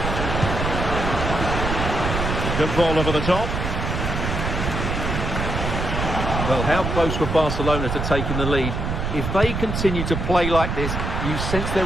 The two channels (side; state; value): right; noise; rumble, 2 dB below the sound